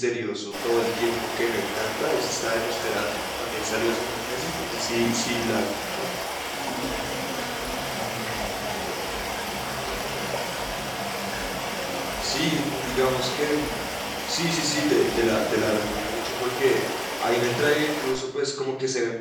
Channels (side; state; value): both; identical; correlation 1.00